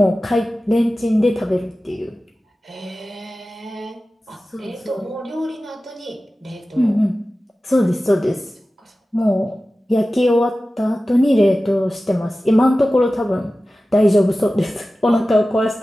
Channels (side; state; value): both; normal; correlation 0.95